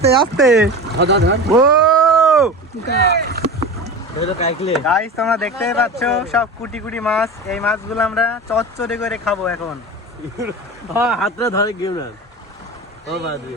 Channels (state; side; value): normal; both; correlation 0.30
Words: আস্তে ও গাইস, তোমরা দেখতেই পাচ্ছ সব কুটি কুটি মাছ। এই মাছগুলো আমরা চচ্চড়ি করে খাবো এখন। হাতটা ধরে গেম না।